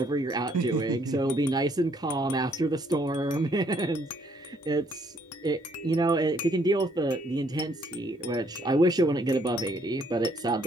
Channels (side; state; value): both; normal; correlation 0.67